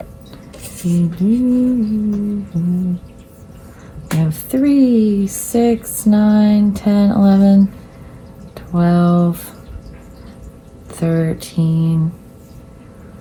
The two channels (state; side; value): identical; both; correlation 1.00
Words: We have 3, 6, 9, 10, 11, 12, 13,